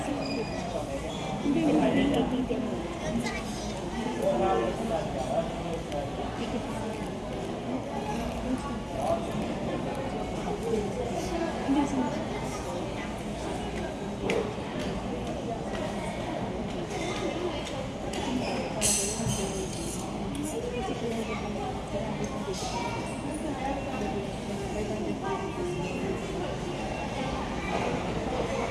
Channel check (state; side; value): identical; both; correlation 1.00